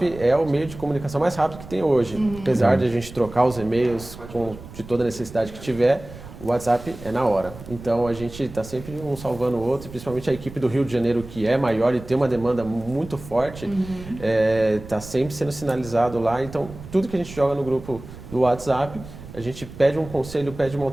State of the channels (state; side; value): noise; right; rumble, 15 dB below the sound